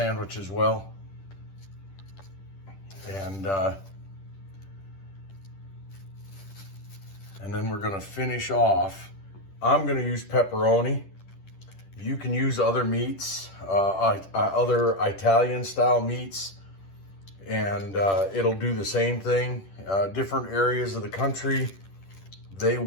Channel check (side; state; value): right; late; 10 ms